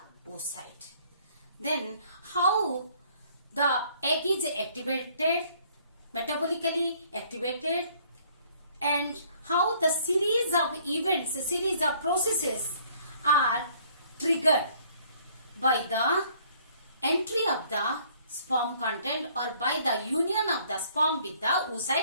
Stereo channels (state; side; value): inverted; both; correlation -0.60